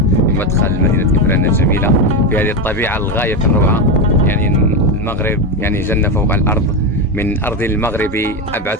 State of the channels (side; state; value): both; normal; correlation 0.12